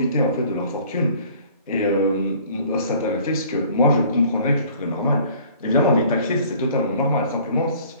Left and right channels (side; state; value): both; inverted; correlation -0.53